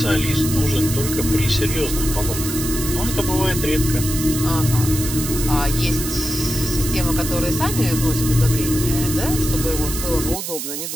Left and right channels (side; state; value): right; noise; hiss, 5 dB below the sound